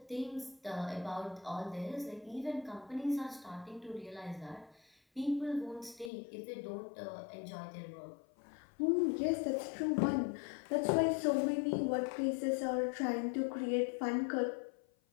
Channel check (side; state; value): right; drops out; at 6.1 s